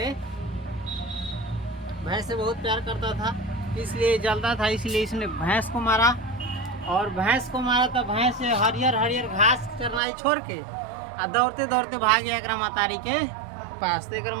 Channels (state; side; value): drops out; left; at 10.0 s